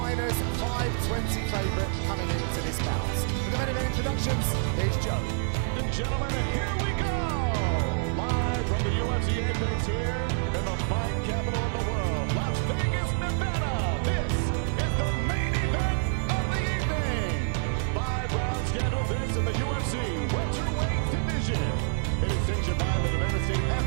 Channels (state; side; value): silent; left; digital silence